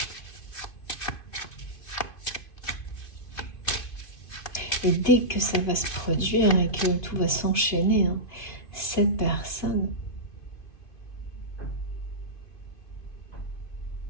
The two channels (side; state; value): right; late; 2.5 ms